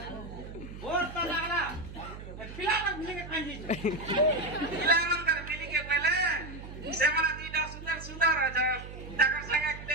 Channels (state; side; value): noise; right; hum, 12 dB below the sound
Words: बोर तो लागला पिलावा मिले के खाई दिछू पिलावन कर मिली के पहले से मला तीटा सुंदर सुंदर আছে তাকর সঙ্গে